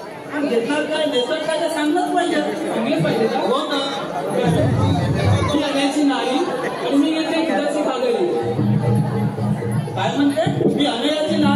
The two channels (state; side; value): identical; both; correlation 1.00